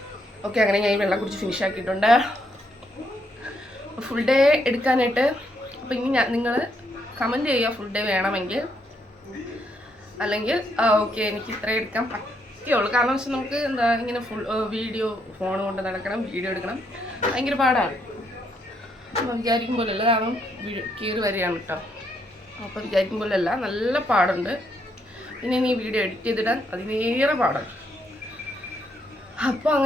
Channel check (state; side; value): normal; both; correlation 0.75